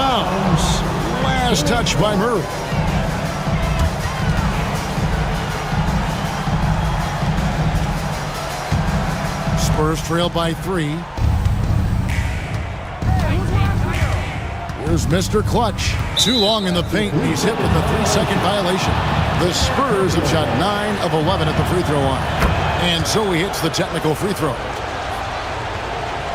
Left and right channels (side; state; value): both; identical; correlation 1.00